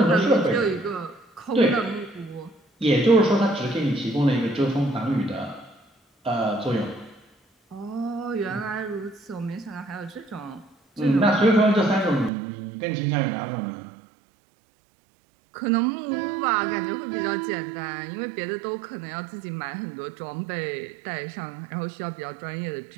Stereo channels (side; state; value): left; drops out; at 12.3 s